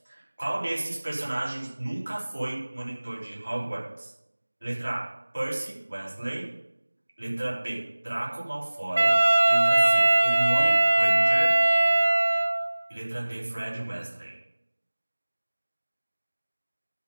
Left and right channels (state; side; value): inverted; both; correlation -1.00